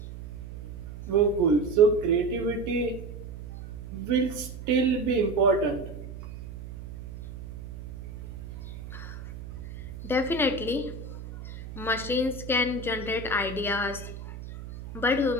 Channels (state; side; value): noise; right; hum, 11 dB below the sound